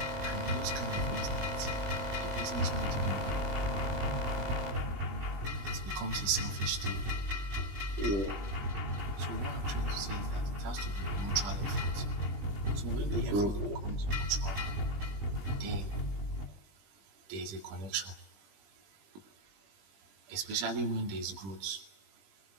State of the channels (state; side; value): late; left; 20 ms